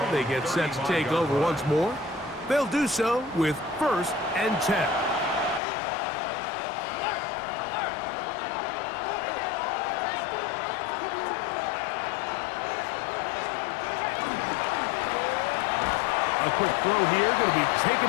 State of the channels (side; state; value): right; drops out; at 5.6 s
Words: They get set to take over once more. They'll do so with 1st and 10. A quick throw here, going to be